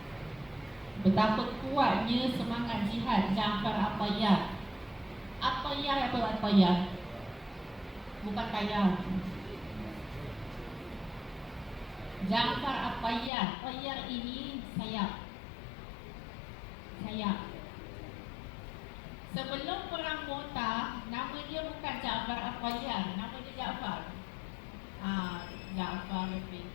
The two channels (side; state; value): right; drops out; at 13.3 s